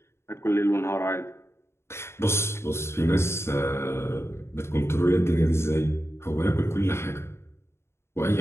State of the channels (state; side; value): late; right; 0.12 ms